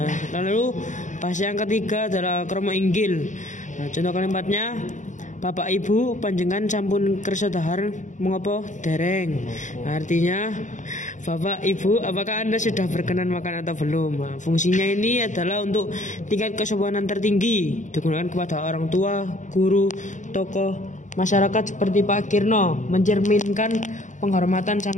lalu bahasa yang ketiga adalah krama inggil. Nah, contoh kalimatnya Bapak Ibu panjenengan sampun kersa dahar mengopo dereng. Nah, artinya Bapak Ibu apakah Anda sudah berkenan makan atau belum. Nah, fungsinya ini adalah untuk tingkat kesopanan tertinggi, digunakan kepada orang tua, guru, tokoh masyarakat seperti Pak Kirno, mencerminkan penghormatan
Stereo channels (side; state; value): right; late; 0.36 ms